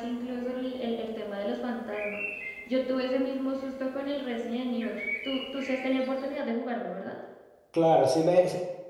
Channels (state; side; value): identical; both; correlation 1.00